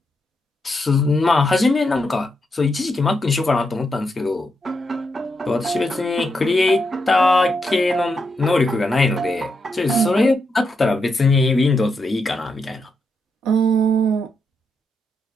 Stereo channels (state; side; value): normal; both; correlation 0.83